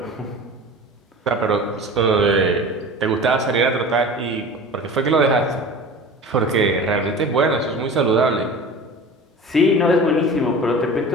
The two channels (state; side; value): normal; both; correlation 0.37